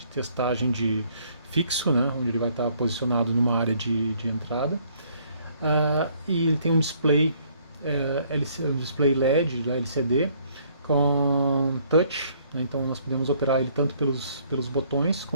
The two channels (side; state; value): both; inverted; correlation -0.64